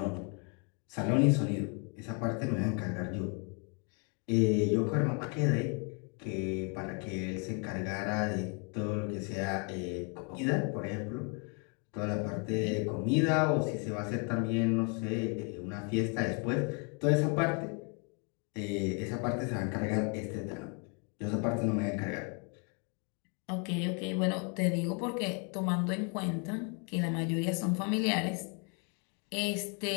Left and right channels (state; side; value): quieter; right; 36.7 dB